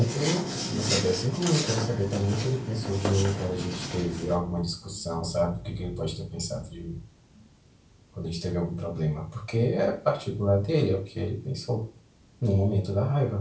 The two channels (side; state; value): both; identical; correlation 1.00